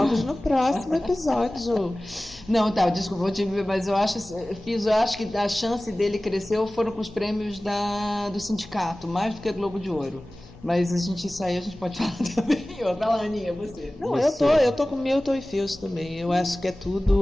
no próximo episódio. Não, desculpa, vou te ver, mas eu acho que a chance dele cresceu foram com os prêmios do sindicato, mais do que Globo de Ouro. Mas isso aí a gente pode falar também. Vai lá, Aninha, você. Não, eu tô com Milton e Fios também. Eu acho que é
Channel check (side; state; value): both; normal; correlation 0.97